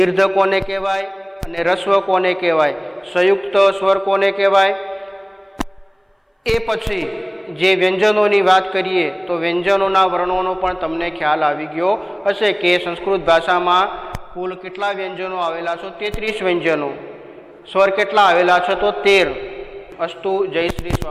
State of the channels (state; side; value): identical; both; correlation 1.00